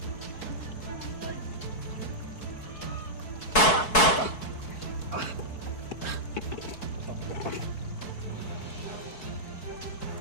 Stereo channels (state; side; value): late; right; 4.6 ms